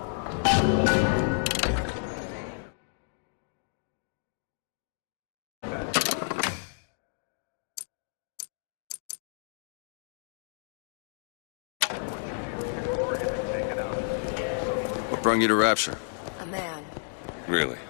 brung you to Rapture? A man. Really?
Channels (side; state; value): right; silent; digital silence